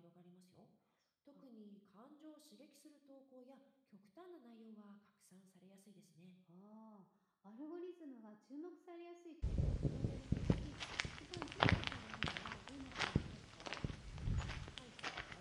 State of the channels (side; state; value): both; identical; correlation 1.00